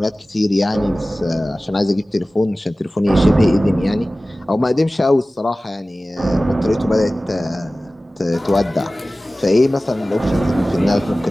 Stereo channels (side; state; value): both; normal; correlation 0.97